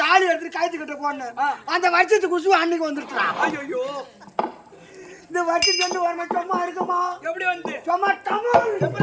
தாலி எடுத்துட்டு கழுத்துக்கிட்ட போனேன். அந்த வருஷத்துக்கு குசு அன்னைக்கு வந்துருச்சான். ஐயோ இந்த வருஷத்துக்கு வந்து வரணும் சும்மா இருக்குமா? எப்படி வந்து சும்மா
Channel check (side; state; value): both; identical; correlation 1.00